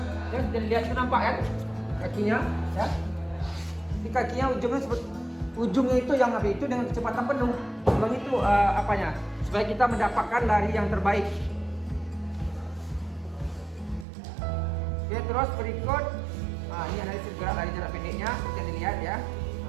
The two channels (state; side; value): drops out; left; at 14.1 s